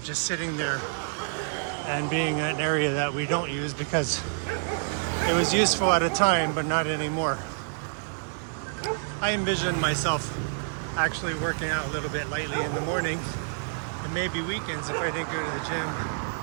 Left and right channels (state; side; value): silent; left; digital silence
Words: just sitting there and being an area that we don't use because it was useful at a time, but not anymore. I envision myself actually working out a little bit lightly in the morning and maybe weekends if I didn't go to the gym.